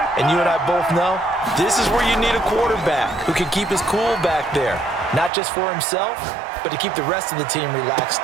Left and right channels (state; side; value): drops out; left; at 5.3 s